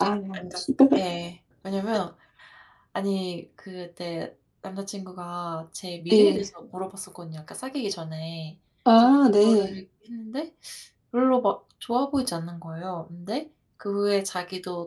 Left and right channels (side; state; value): both; identical; correlation 1.00